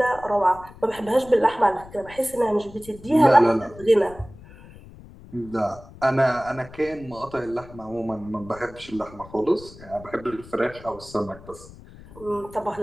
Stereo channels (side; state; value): left; noise; rumble, 19 dB below the sound